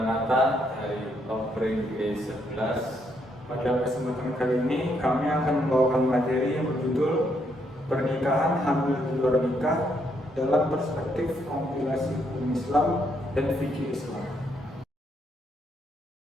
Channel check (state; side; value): normal; both; correlation 0.74